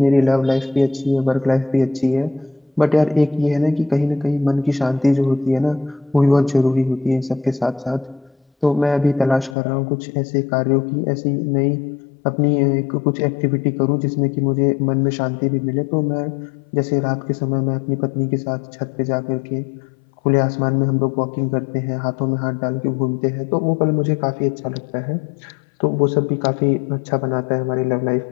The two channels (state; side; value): drops out; right; at 9.6 s